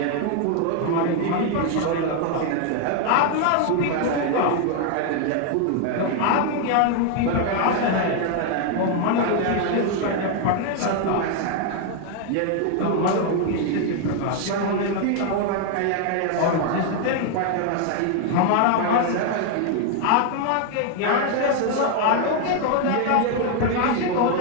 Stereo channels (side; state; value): both; different; correlation 0.00